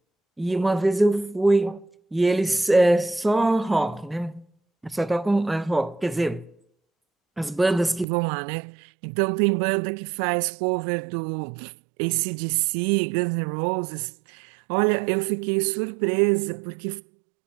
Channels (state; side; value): drops out; left; at 8.1 s